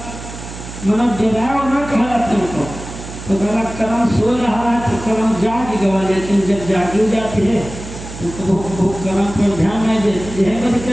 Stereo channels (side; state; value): right; noise; hum, 12 dB below the sound